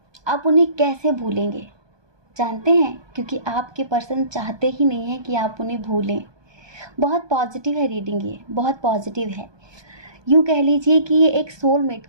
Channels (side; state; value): left; late; 1.2 ms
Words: आप उन्हें कैसे भूलेंगे? जानते हैं, क्योंकि आपके पर्सन चाहते ही नहीं हैं कि आप उन्हें भूलें। बहुत पॉजिटिव है रीडिंग, ये बहुत पॉजिटिव है। यूँ कह लीजिए कि ये एक सोलमेट